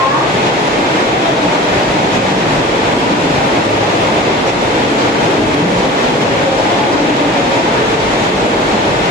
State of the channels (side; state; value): both; normal; correlation 0.38